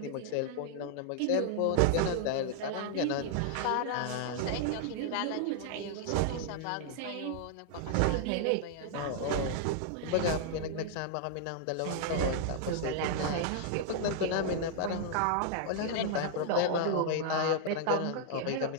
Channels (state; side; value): different; both; correlation -0.01